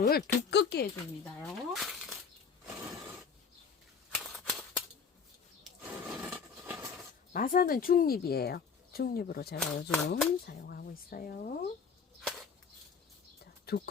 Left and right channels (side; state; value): right; quieter; 6.0 dB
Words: 두껍게 해줍니다요. 마사는 중립이에요. 중립으로 제가 요즘 사용하고 있어요. 자,